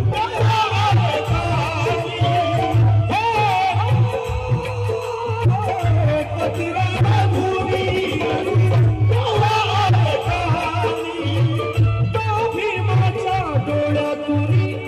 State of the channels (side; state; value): both; identical; correlation 1.00